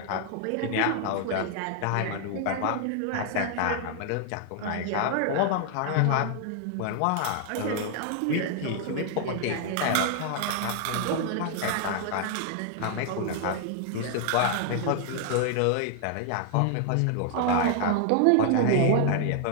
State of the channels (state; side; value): different; both; correlation 0.00